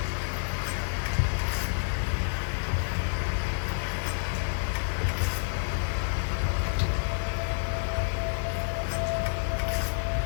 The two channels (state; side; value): silent; right; digital silence